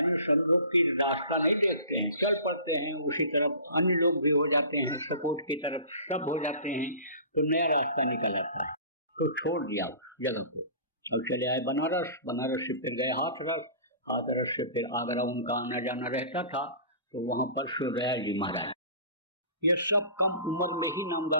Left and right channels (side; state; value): both; inverted; correlation -0.42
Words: समझो की रास्ता नहीं देखते हैं, चल पड़ते हैं उसी तरफ, अन्य लोग भी हो जाते हैं सपोर्ट की तरफ, सब हो जाते हैं, तो नया रास्ता निकल आता है। तो छोड़ दिया जगह को, अब चले आए बनारस, बनारस से फिर गए हाथरस, हाथरस से फिर आगरा उनका आना जाना रहता था, तो वहां पर सूर्यदयाल जी महाराज, ये सब कम उम्र में ही